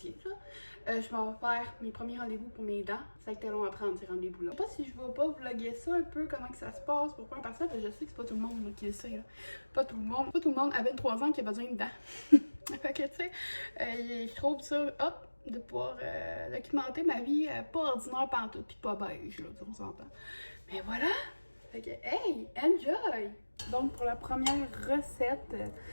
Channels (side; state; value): both; inverted; correlation -1.00